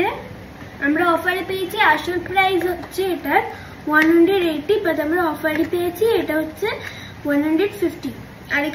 আমরা অফারে পেয়েছি, আসল প্রাইস হচ্ছে এটার 180, বাট আমরা অফারে পেয়েছি এটা হচ্ছে 150। আর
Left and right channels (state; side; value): identical; both; correlation 1.00